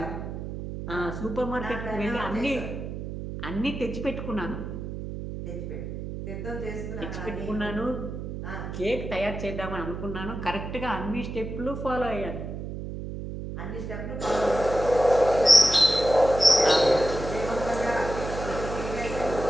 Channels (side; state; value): right; noise; hum, 7 dB below the sound